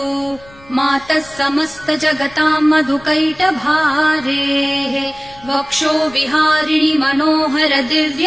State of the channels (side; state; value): left; noise; rumble, 24 dB below the sound